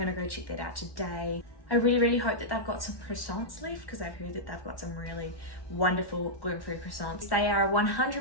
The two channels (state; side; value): late; right; 1.1 ms